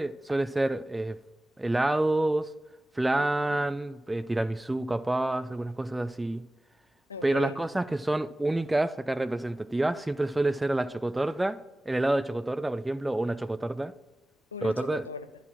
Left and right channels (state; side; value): normal; both; correlation 0.97